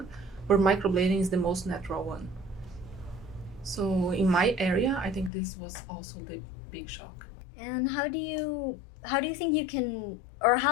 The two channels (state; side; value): drops out; right; at 5.3 s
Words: but microblading is the most natural one. So in my area, I think this was also the big shock. And how do you think you can, or